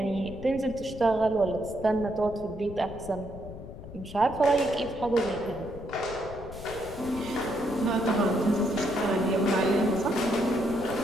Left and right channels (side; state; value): left; noise; rumble, 13 dB below the sound